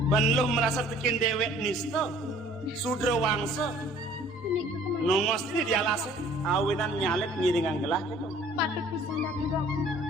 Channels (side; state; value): both; normal; correlation 0.54